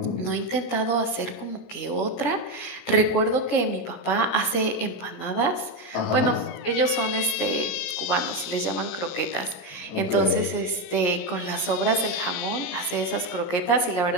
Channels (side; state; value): right; late; 17 ms